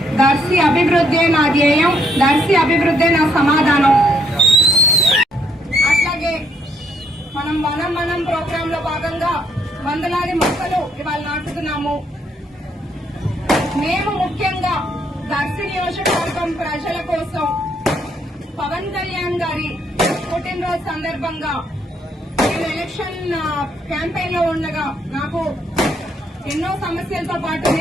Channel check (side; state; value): both; normal; correlation 0.71